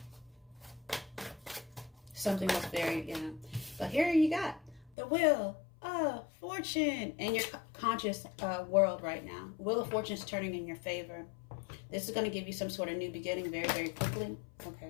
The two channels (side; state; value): right; drops out; at 4.9 s